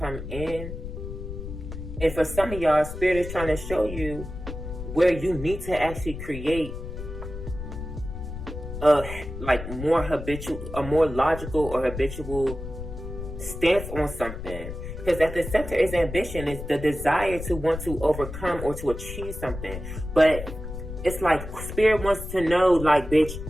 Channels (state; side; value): noise; left; rumble, 9 dB below the sound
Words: in. And for some of y'all, Spirit is trying to show you where you need to actually create a more logical or habitual stance on something. Because at the center is ambition. It's the desire to want to overcome or to achieve something. But it's like Spirit wants to know, like, bitch,